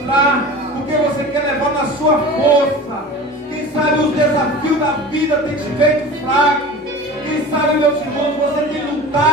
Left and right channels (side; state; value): both; normal; correlation 0.36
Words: porque você quer levar na sua força. Quem sabe os desafios da vida têm te feito fraco. Quem sabe, meus irmãos, você tem